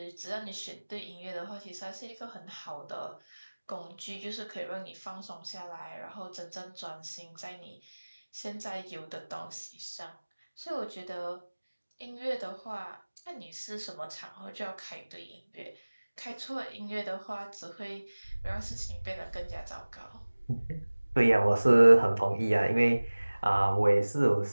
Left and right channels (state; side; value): inverted; both; correlation -1.00